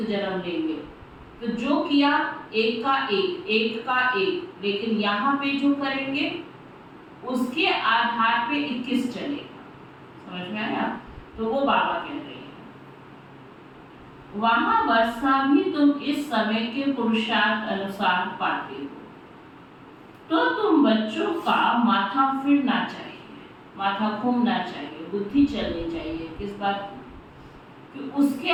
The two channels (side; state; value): both; identical; correlation 1.00